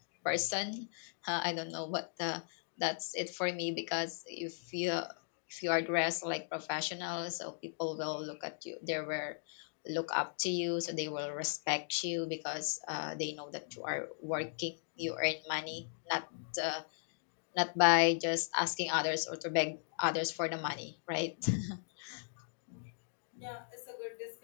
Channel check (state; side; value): silent; right; digital silence